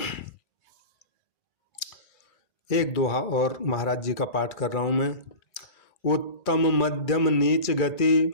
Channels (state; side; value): late; right; 2.3 ms